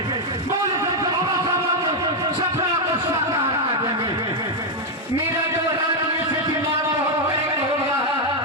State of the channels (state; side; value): normal; both; correlation 0.02